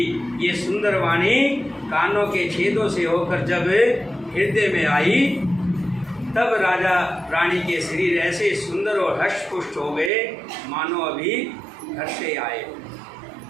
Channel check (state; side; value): drops out; left; at 10.1 s